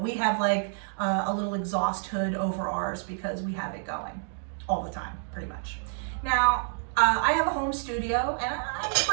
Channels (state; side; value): silent; left; 59 dB below the other